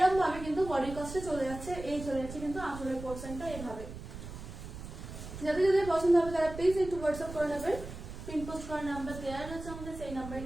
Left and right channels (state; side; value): noise; right; rumble, 11 dB below the sound